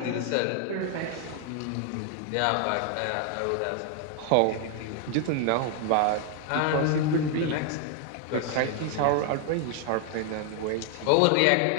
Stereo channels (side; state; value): both; different; correlation 0.00